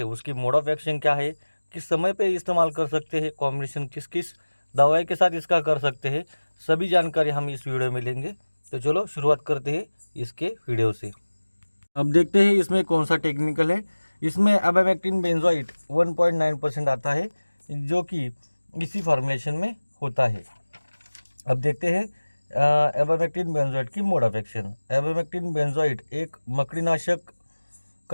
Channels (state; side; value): inverted; both; correlation -1.00